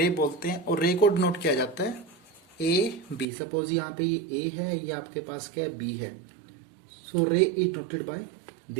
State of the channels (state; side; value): drops out; left; at 3.2 s